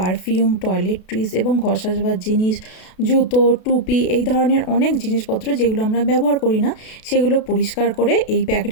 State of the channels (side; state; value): right; late; 32 ms